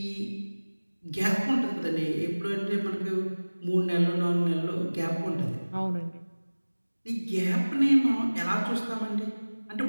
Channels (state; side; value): inverted; both; correlation -1.00